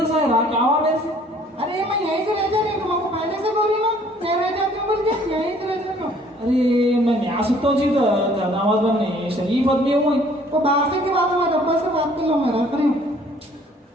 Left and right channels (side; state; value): both; normal; correlation 0.57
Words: सायरा, क्या हुआ मेरे से? अरे मैं यहीं से रह जा रही हूँ, तुमको पहले से बोल रही ना, मैं रह जाती हूँ बोल के यहीं से रह जा रही हूँ। अरे मैं न्याय सुनता हूँ जी, दामाद बनने शरीफ आदमी हूँ। वो बाहर से के बाद हमारे अब्बा से बात कर लो, मैं रख रही हूँ।